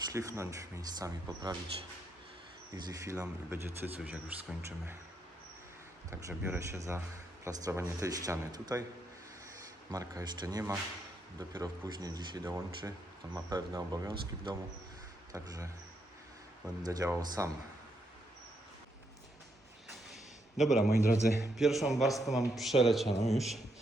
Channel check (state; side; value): normal; both; correlation 0.78